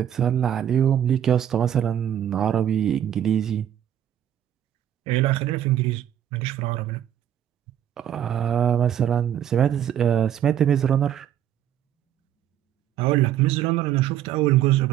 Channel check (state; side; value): quieter; left; 10.5 dB